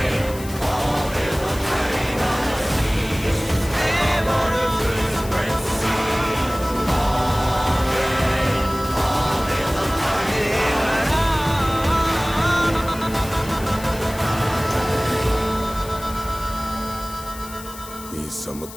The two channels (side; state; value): left; noise; hiss, 15 dB below the sound